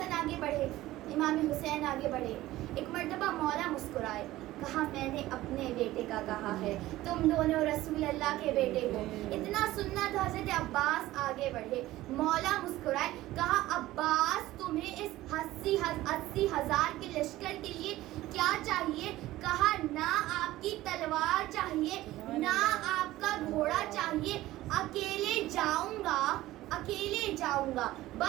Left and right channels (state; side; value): quieter; left; 16.3 dB